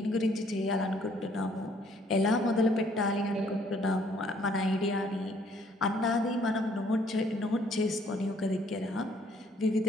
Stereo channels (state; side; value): normal; both; correlation 0.63